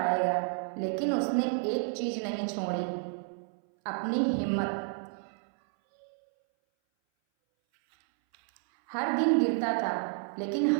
लेकिन उसने एक चीज नहीं छोड़ी, अपनी हिम्मत। हर दिन गिरता था लेकिन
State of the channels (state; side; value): silent; left; 58 dB below the other